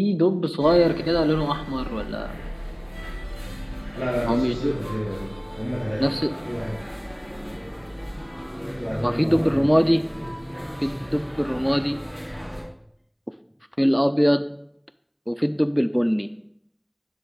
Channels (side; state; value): both; identical; correlation 1.00